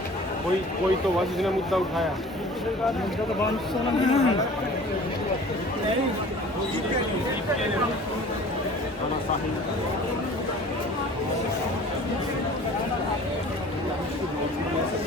कोई तो बस इसने मुद्दा उठाया।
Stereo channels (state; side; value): normal; both; correlation 0.45